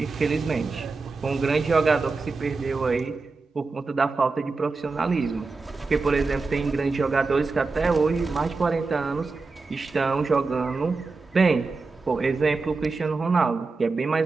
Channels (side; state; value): left; quieter; 4.0 dB